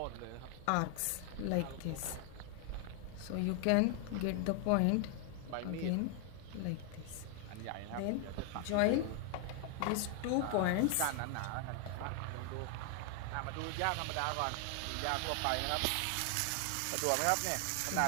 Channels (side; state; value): both; different; correlation 0.00